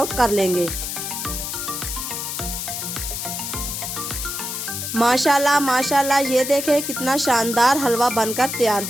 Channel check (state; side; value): noise; left; hiss, 4 dB below the sound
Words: कर लेंगे। माशाल्लाह माशाल्लाह, ये देखें कितना शानदार हलवा बनकर तैयार